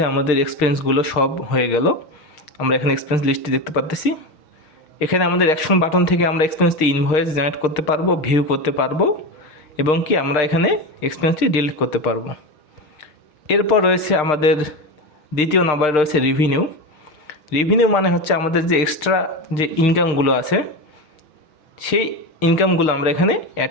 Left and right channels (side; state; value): right; late; 6.4 ms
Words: আমাদের এক্সপেন্সগুলো সব হয়ে গেল। আমরা এখানে এক্সপেন্স লিস্টটি দেখতে পাচ্ছি। এখানে আমাদের অ্যাকশন বাটন থেকে আমরা এক্সপেন্সটি ইনভয়েস জেনারেট করতে পারবো, ভিউ করতে পারবো, এবং কি আমরা এখানে এক্সপেন্সটি ডিলিট করতে পারবো। এরপর রয়েছে আমাদের দ্বিতীয় নাম্বারে রয়েছে রেভিনিউ। রেভিনিউ মানে হচ্ছে আমাদের যে এক্সট্রা যে ইনকামগুলো আছে সেই ইনকামগুলো আমরা এখানে